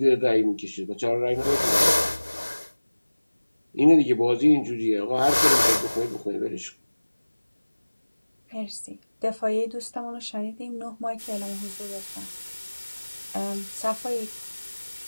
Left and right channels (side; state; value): both; inverted; correlation -1.00